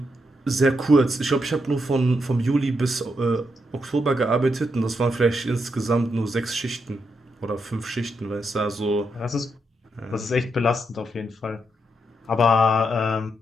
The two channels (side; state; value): both; normal; correlation 0.81